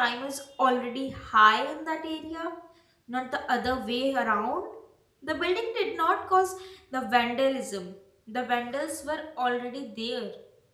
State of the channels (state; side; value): identical; both; correlation 1.00